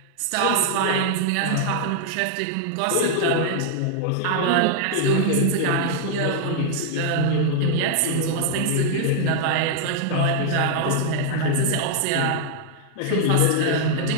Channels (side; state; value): both; different; correlation -0.01